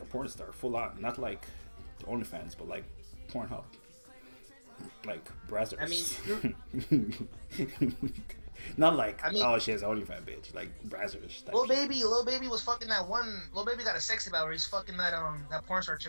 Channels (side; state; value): both; inverted; correlation -1.00